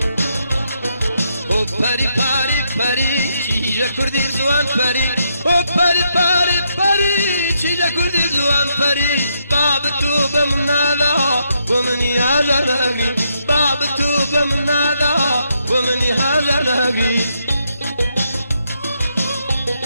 او پری پاری پری چیجا کردی زوان پری او پری پاری پری چیجا کردی زوان پری باب تو بمنالا ومني هاجر لهقري باب تو بمنالا ومني هاجر لهقري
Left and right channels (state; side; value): inverted; both; correlation -0.78